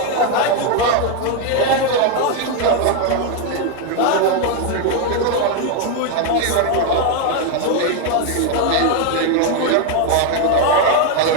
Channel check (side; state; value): both; different; correlation 0.01